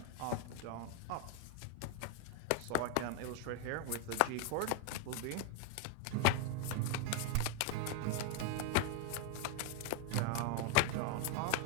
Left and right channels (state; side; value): different; both; correlation 0.00